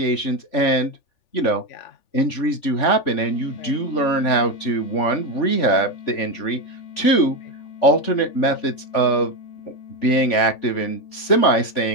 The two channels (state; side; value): late; right; 3.4 ms